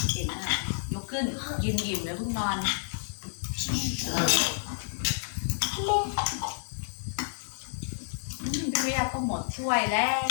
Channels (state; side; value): silent; right; digital silence